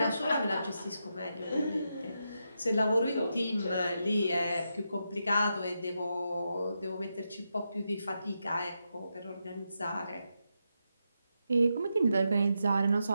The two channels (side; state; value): both; inverted; correlation -0.85